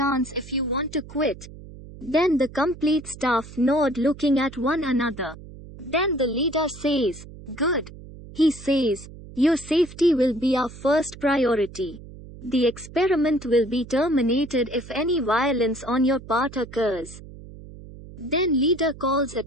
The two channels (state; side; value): noise; right; hum, 16 dB below the sound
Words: if you want to quit." Then the complete staff nod looking at one another. Then the leader says, "Good." He says, "Your safety will be our first priority. The experiment will be terminated if any violence on your part occurs." Then leader calls